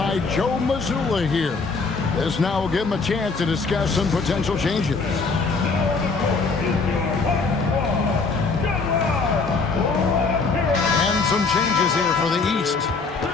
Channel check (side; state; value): right; quieter; 4.3 dB